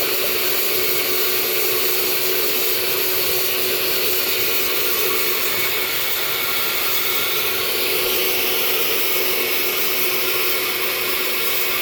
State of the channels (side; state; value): both; identical; correlation 1.00